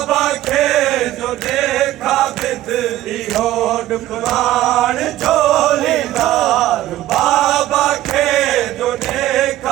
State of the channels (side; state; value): left; quieter; 14.6 dB